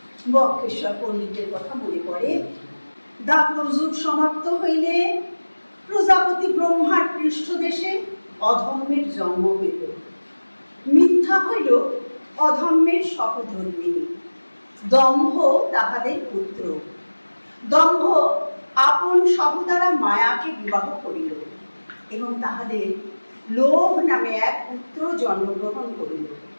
বক্রেশ্বর পণ্ডিতের কথা মনে পড়ে। দাপর যুগ সমাপ্ত হইলে প্রজাপতি ব্রহ্মার পৃষ্ঠদেশে অধর্মের জন্ম হইল। মিথ্যা হইল অধর্মের সহধর্মিণী, দম্ভ তাহাদের পুত্র। দম্ভ আপন সহদারা মায়াকে বিবাহ করিল এবং তাহাদের লোভ নামে এক পুত্র জন্মগ্রহণ করিল।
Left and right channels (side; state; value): both; inverted; correlation -1.00